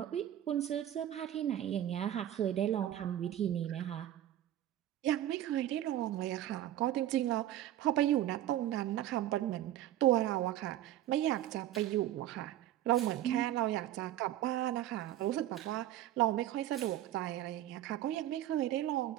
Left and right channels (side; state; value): left; quieter; 12.8 dB